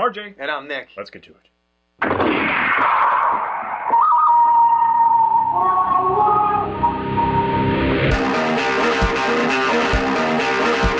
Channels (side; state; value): both; identical; correlation 1.00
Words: And I'm Nick. Let's get to it.